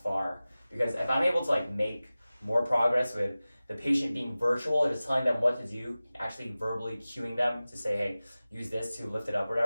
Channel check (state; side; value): inverted; both; correlation -0.97